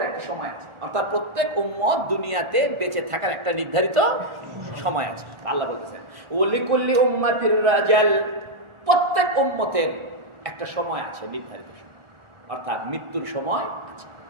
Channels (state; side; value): late; left; 1.4 ms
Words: একটা সময় আছে, অর্থাৎ প্রত্যেক উম্মত দুনিয়াতে বেঁচে থাকার একটা নির্ধারিত সময় আছে। আল্লাহ বলতেছেন ও লিকুল্লি উম্মাতির আজাল, প্রত্যেক উম্মতের একটা সময় আছে, নির্ধারিত সময়, অর্থাৎ মৃত্যুর সময় আছে।